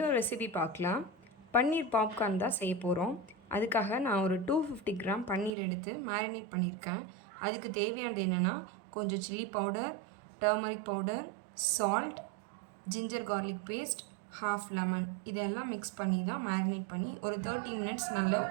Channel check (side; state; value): left; drops out; at 5.5 s